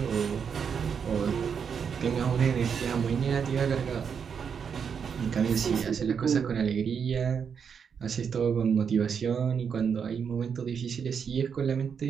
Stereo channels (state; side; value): quieter; left; 6.8 dB